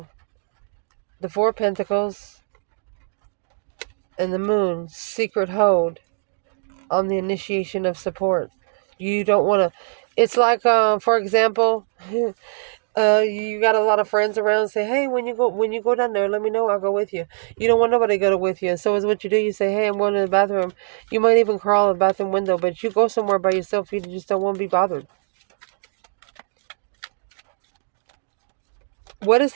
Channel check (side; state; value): left; silent; digital silence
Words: The Four of Pentacles and the Moon, secret hold on the initiation of support. You don't want to, it's like, for example, you got a lot of friends around, say, hey, when you go down there, let me know, I'll go with you. You don't want nobody to go with you. So is what you do, you say, hey, I'm going to the bathroom. You might even crawl a bathroom window, but you go somewhere by yourself, you just don't want to be bothered. What is